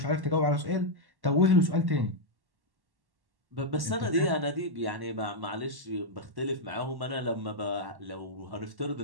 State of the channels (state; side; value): late; left; 1.1 ms